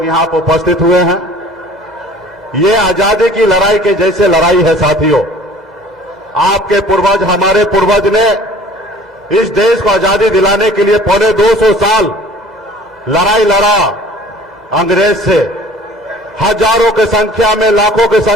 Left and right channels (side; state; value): both; normal; correlation 0.49